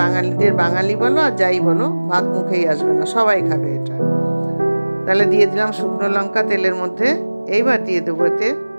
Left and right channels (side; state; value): both; inverted; correlation -1.00